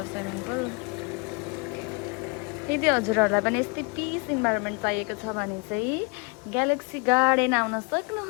स्विमिङ पुल। यदि हजुरहरूलाई पनि यस्तै पिस इन्भाइरोमेन्ट चाहिएको छ भने चाहिँ ग्यालेक्सी गार्डन आउन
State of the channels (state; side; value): quieter; right; 31.1 dB